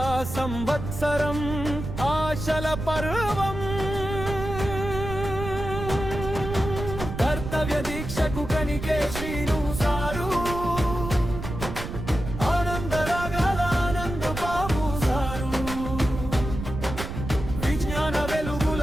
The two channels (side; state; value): right; noise; rumble, 7 dB below the sound